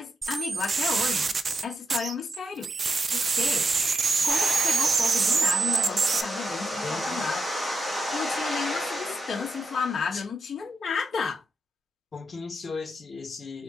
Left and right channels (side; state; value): both; normal; correlation 0.83